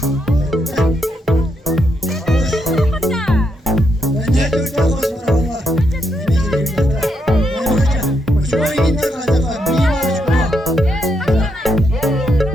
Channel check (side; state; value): both; normal; correlation 0.80